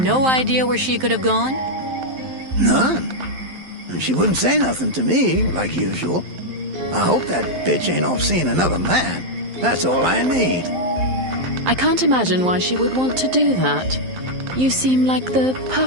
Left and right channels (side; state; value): left; late; 11 ms